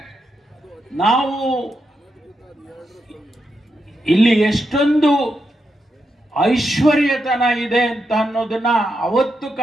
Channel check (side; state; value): both; normal; correlation 0.84